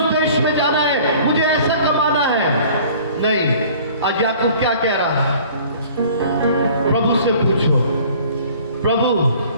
देश में जाना है, मुझे ऐसा कमाना है। नहीं, आज याकूब क्या कह रहा है? प्रभु से पूछो, प्रभु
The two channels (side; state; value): both; inverted; correlation -0.50